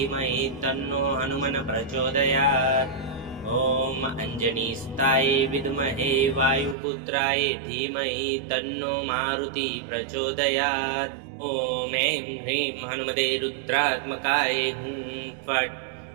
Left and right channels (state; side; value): drops out; left; at 6.8 s